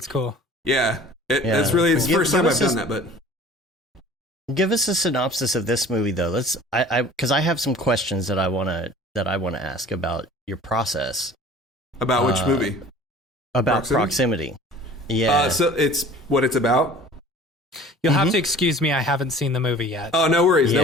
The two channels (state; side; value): normal; both; correlation 0.46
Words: cool. Yeah. It's the first time I've done that, but give us a synopsis of this movie, though. Because I have some questions that I want to ask about your process. About which movie? About Proximity. Yeah. So it's what it's about. You'll have to excuse me. I haven't seen the movie yet. Oh, no worries. No